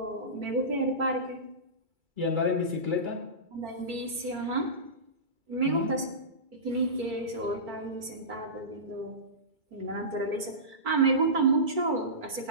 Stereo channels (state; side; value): late; left; 2.3 ms